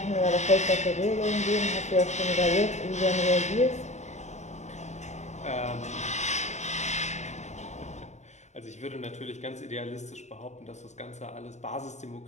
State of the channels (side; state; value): right; late; 0.34 ms